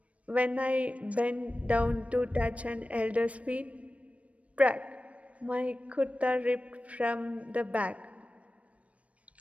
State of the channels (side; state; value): left; late; 0.065 ms